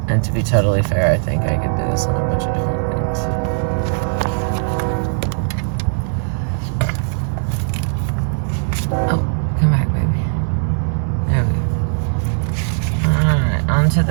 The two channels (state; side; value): silent; left; digital silence